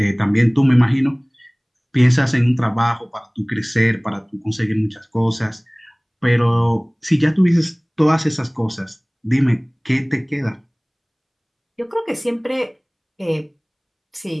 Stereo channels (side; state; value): both; identical; correlation 1.00